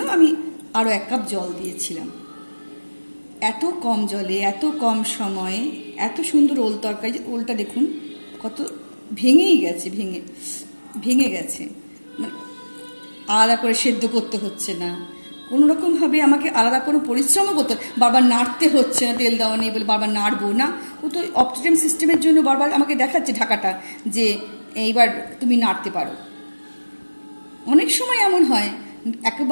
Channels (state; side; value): inverted; both; correlation -1.00